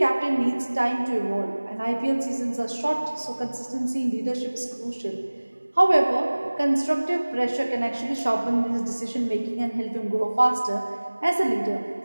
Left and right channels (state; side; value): inverted; both; correlation -1.00